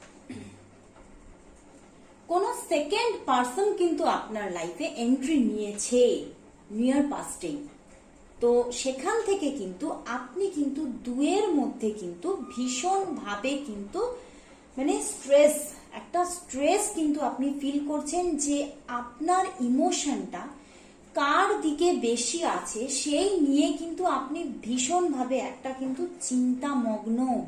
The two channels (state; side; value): identical; both; correlation 1.00